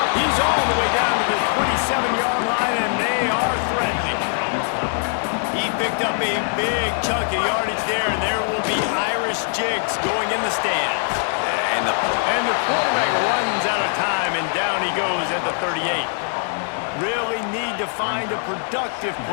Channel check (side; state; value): right; silent; 64 dB below the other